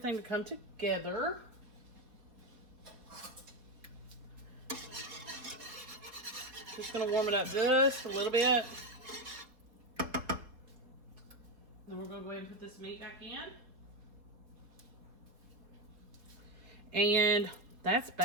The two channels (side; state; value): left; late; 4.0 ms